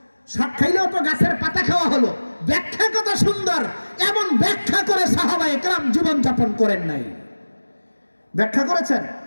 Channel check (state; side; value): inverted; both; correlation -1.00